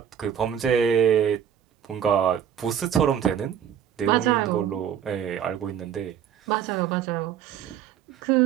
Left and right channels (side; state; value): left; quieter; 9.0 dB